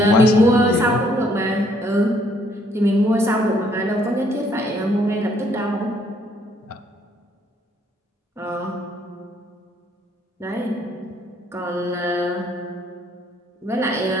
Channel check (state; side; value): normal; both; correlation 0.66